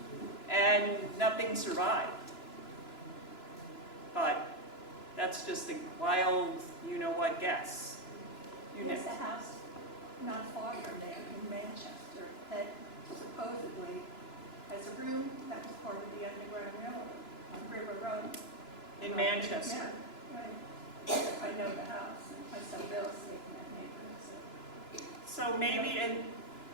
and nothing survived. But that's just a wild, you-know-what guess. You There's a next. house not far from there in Manchester that supposedly has a room that was part of the Underground Railroad on River Road. In Manchester. Yeah, right. I know the house, and I sell real estate in that neighborhood, so. So maybe, and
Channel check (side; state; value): right; late; 2.9 ms